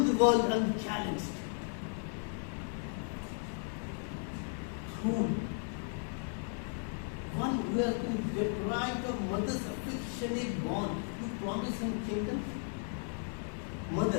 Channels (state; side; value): silent; right; 54 dB below the other